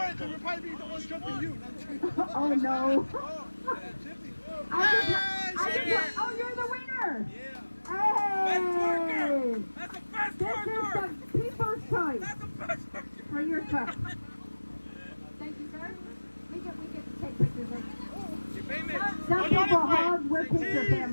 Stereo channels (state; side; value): inverted; both; correlation -1.00